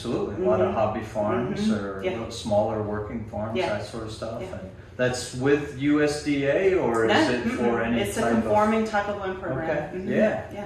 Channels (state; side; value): identical; both; correlation 1.00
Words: A lot of hobby farms or smaller working farms, that sort of stuff. And that's with USDA, or is it for any It's a conforming type of loan program. Okay.